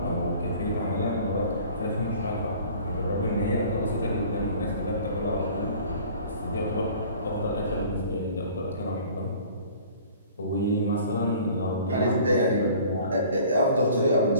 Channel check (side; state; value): both; inverted; correlation -0.48